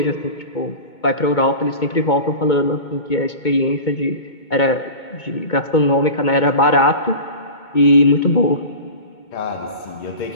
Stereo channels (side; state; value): right; late; 2.2 ms